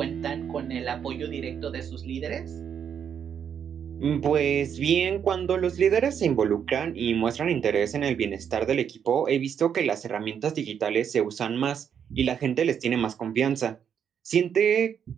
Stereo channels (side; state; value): left; quieter; 8.1 dB